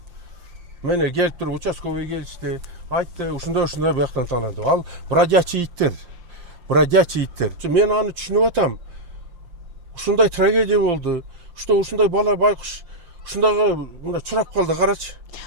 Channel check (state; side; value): late; left; 5.7 ms